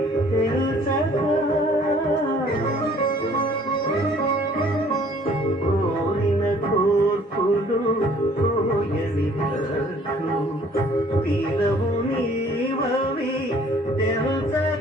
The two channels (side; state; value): both; normal; correlation 0.56